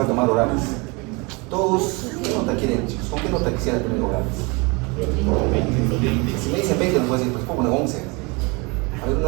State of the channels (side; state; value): left; quieter; 28.2 dB